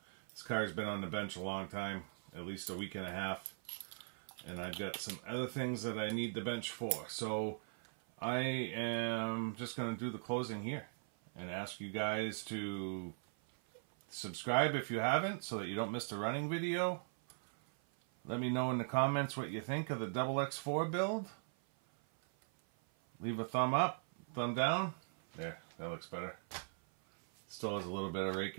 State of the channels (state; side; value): silent; left; 51 dB below the other